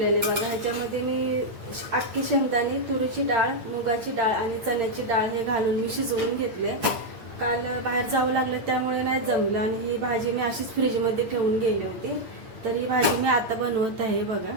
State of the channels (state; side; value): late; left; 8.6 ms